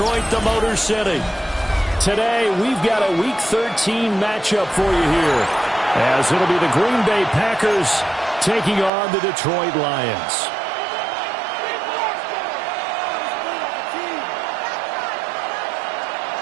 the Motor City. Today, we've got a Week 13 matchup for you here, as it'll be the Green Bay Packers taking on the Detroit Lions.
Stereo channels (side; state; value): left; drops out; at 8.9 s